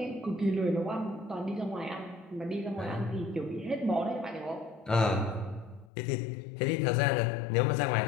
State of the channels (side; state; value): right; drops out; at 5.9 s